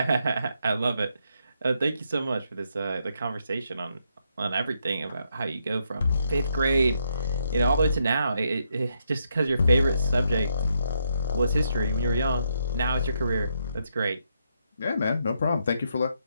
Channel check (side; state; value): both; inverted; correlation -0.78